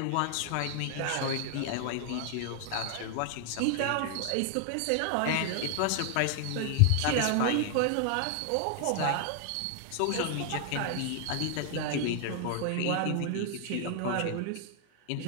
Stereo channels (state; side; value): different; both; correlation 0.00